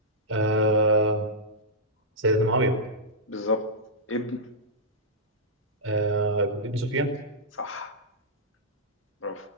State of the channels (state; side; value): normal; both; correlation -0.10